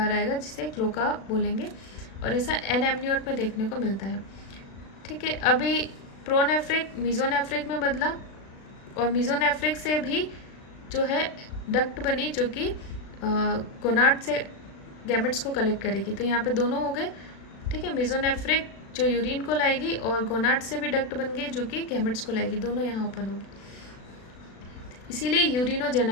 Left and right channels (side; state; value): right; late; 36 ms